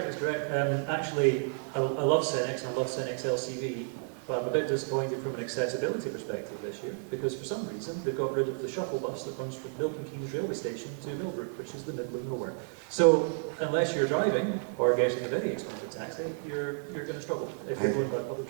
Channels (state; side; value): silent; left; 57 dB below the other